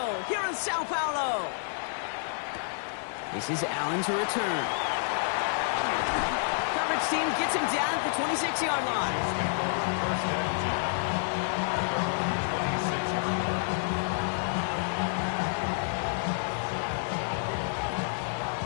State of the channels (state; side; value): silent; right; 58 dB below the other